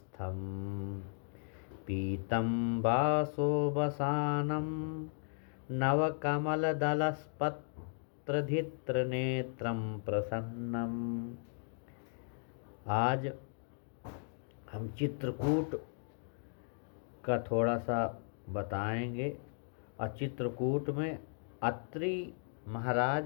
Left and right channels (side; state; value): right; silent; digital silence